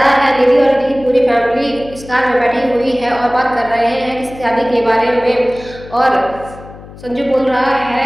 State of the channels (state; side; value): noise; left; hum, 17 dB below the sound